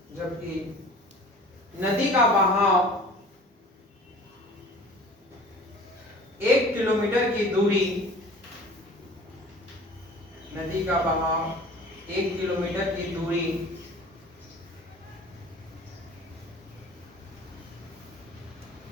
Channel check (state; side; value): normal; both; correlation 0.44